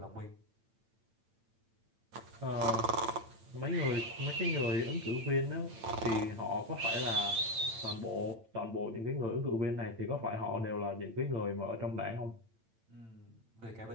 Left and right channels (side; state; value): left; late; 8.9 ms